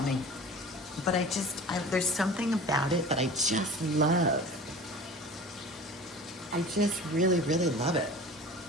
But there's something about it that I just love. I just really, really love it.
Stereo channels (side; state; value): both; normal; correlation 0.39